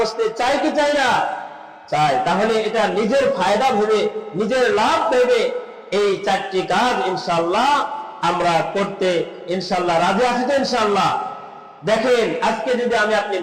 চাই কি চাই না? চাই। তাহলে এটা নিজের ফায়দা ভেবে, নিজের লাভ ভেবে এই চারটি কাজ ইনশাআল্লাহ আমরা করতে ইনশাআল্লাহ রাজি আছি তো ইনশাআল্লাহ। দেখেন, আজকে যদি আমি আপনি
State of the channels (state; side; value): identical; both; correlation 1.00